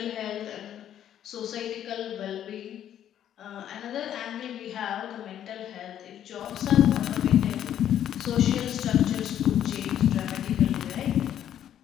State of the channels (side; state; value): right; quieter; 10.6 dB